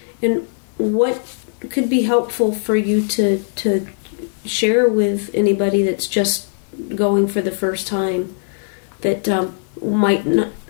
And what could be helpful for you to share with anybody that's just going for the first time that might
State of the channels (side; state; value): right; silent; digital silence